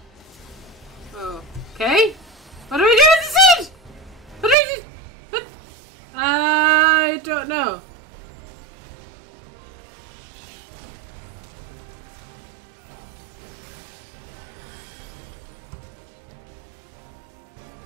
Oh. Okay. What do we do with the seed? What do we do? What? I don't know.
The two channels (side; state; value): left; drops out; at 4.5 s